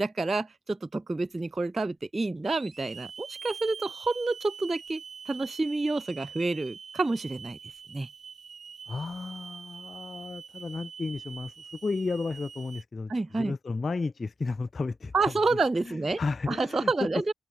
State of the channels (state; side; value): normal; both; correlation 0.91